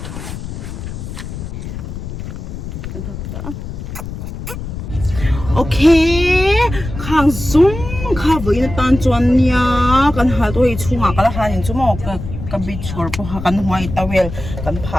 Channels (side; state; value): left; noise; rumble, 8 dB below the sound